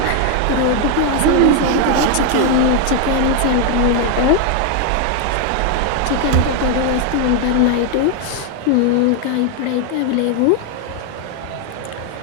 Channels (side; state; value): both; different; correlation 0.01